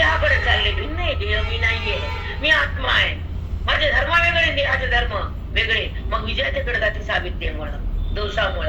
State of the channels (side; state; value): both; identical; correlation 1.00